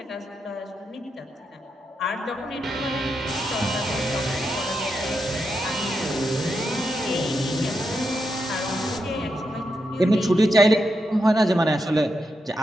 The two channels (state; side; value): normal; both; correlation 0.85